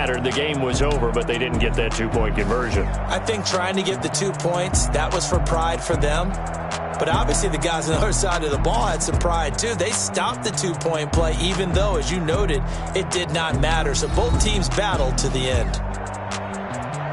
The game was over, but they didn't get that 2-point conversion. I think trying to get the 2 points, that was for pride for them. But obviously the guys on the other side of the ball had some pride too. They stopped the 2-point play even though, as you noted, it did not matter. So both teams battled to the end.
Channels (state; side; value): identical; both; correlation 1.00